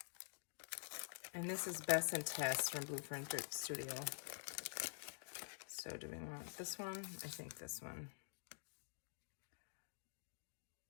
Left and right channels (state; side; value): silent; right; digital silence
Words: And this is Bess and Tess from Blue Fern Studio. So do we want this one? I think this one.